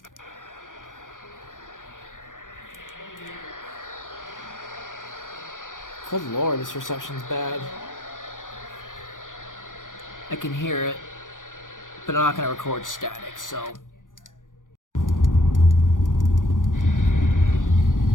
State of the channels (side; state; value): right; late; 0.88 ms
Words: Good lord, this reception's bad. I can hear it, but I'm not gonna record static, so. I